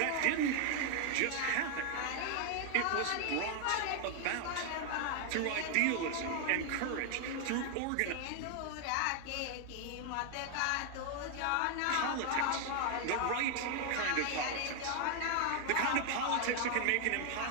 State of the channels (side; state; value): both; different; correlation 0.00